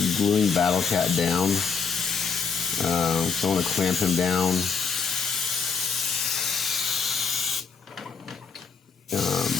gluing Battlecat down. So I want to clamp him down.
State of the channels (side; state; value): right; quieter; 5.8 dB